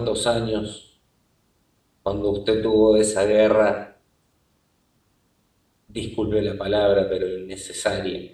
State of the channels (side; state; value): both; identical; correlation 1.00